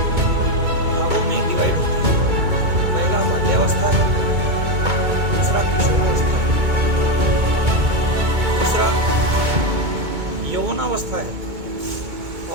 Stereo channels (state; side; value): late; left; 2.2 ms